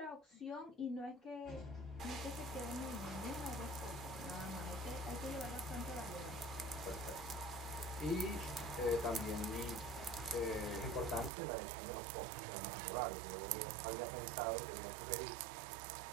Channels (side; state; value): left; drops out; at 11.3 s